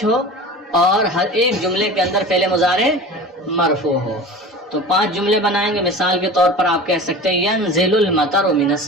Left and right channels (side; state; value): both; normal; correlation 0.36